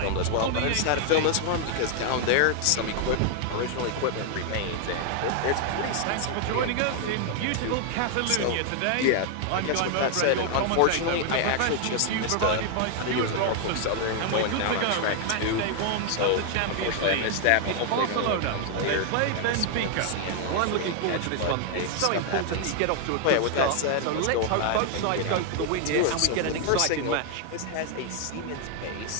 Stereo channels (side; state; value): both; different; correlation 0.00